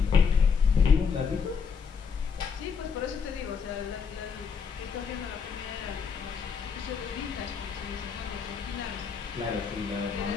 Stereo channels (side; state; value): right; quieter; 6.1 dB